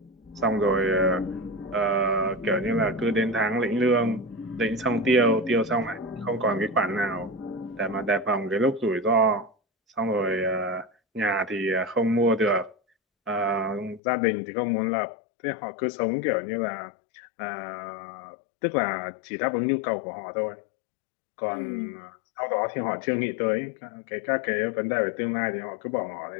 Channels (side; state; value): right; drops out; at 14.0 s